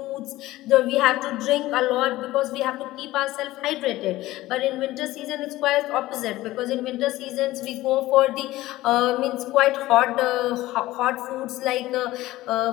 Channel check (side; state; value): right; quieter; 17.0 dB